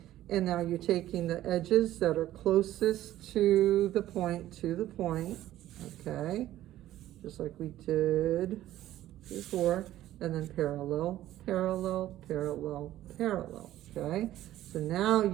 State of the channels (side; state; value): left; quieter; 13.9 dB